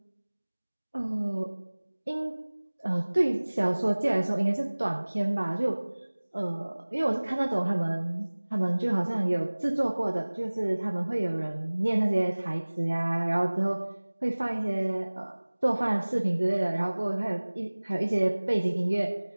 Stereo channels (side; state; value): both; inverted; correlation -1.00